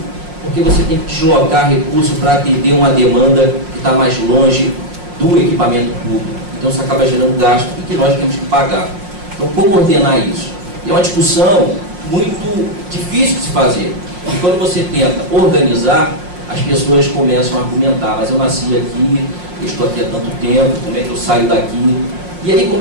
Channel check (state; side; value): late; left; 5.6 ms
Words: porque você tem que deslocar recursos para atender uma demanda que está mais longe do equipamento público. Então isso acaba gerando gasto e que nós temos que pagar. Então como ordenar isso? É uma discussão muito difícil de se fazer. E quando você tenta organizar, as pessoas começam a argumentar, mas eu nasci aqui, eu estou aqui há tanto tempo, como é que eu saio daqui? E aí